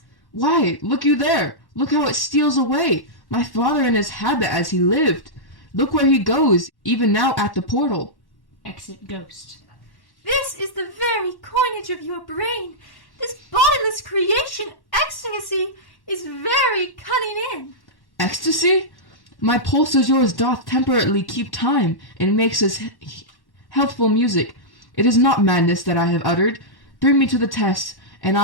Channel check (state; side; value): late; right; 1.1 ms